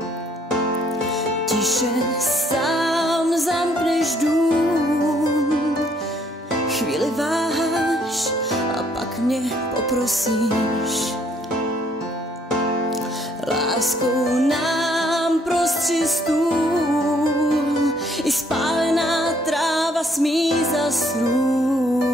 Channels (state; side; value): normal; both; correlation 0.66